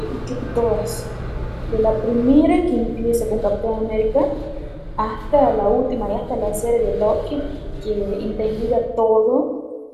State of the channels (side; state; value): both; identical; correlation 1.00